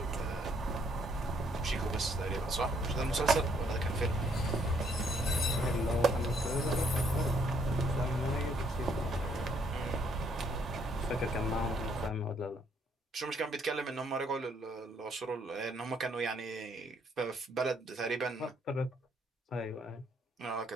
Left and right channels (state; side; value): normal; both; correlation 0.68